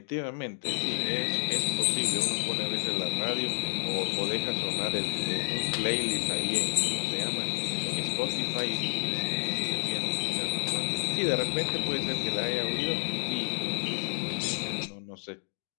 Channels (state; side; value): silent; right; digital silence